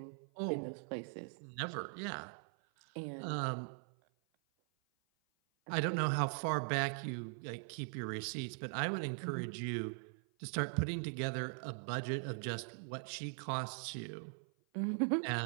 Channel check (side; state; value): left; silent; 51 dB below the other